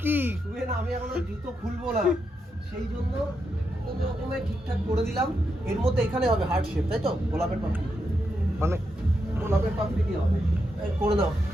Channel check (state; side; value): normal; both; correlation 0.83